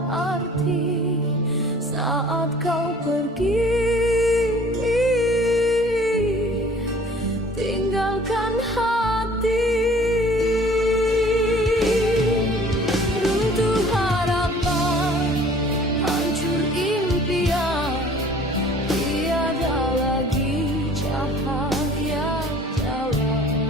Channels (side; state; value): both; normal; correlation 0.51